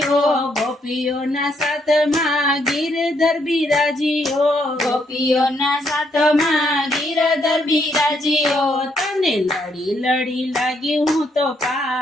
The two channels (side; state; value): both; normal; correlation 0.73